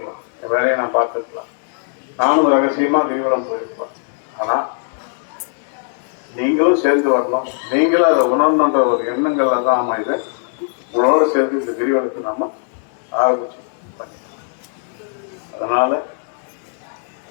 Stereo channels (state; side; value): silent; right; digital silence